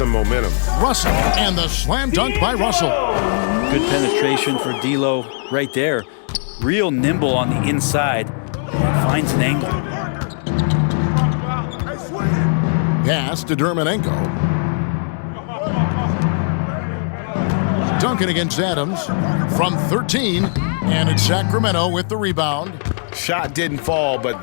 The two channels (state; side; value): silent; right; digital silence